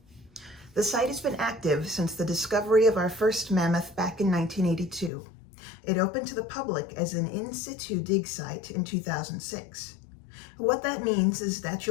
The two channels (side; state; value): right; drops out; at 5.1 s